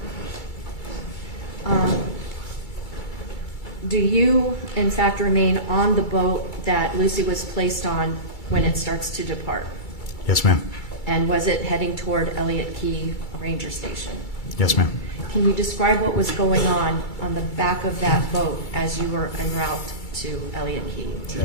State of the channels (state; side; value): late; right; 2.3 ms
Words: Do you, in fact, remain on the boat that Lucy was placed on when it starts to depart? Yes, ma'am. And was it heading toward Elliott Key Ranger Station? Yes, ma'am. Can you describe what was going on the back of that boat as you were en route to Elliott Key?